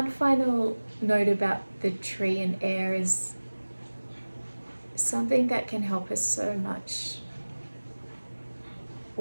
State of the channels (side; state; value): both; inverted; correlation -1.00